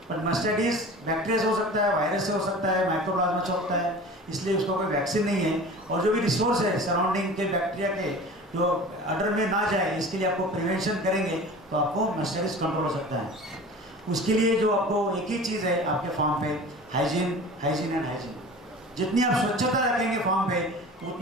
बट मास्टाइटिस बैक्टीरिया से हो सकता है, वायरस से हो सकता है, माइक्रोप्लाज्मा से होता है, इसलिए उसका कोई वैक्सीन नहीं है। और जो भी रिसोर्स है सराउंडिंग के बैक्टीरिया के, जो अडर में ना जाए, इसके लिए आपको प्रिवेंशन करेंगे तो आपको मास्टाइटिस कंट्रोल हो सकता है। उसके लिए जो आपको एक ही चीज़ है आपके फार्म पे, हाइजीन एंड हाइजीन। जितनी आप स्वच्छता रखेंगे फार्म पे,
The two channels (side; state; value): both; normal; correlation 0.39